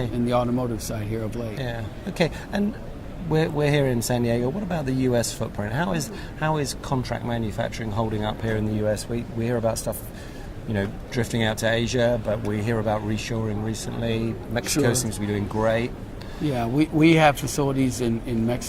the automotive side here of late. Yeah. Okay. And we're here in San Diego. What about the U.S. footprint? How is contract manufacturing holding up here in the U.S.? We hear about stuff, drifting out to Asia, but we hear about reshoring recently. Mexico seems to be doing great. Yeah, we have facilities in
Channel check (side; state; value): both; identical; correlation 1.00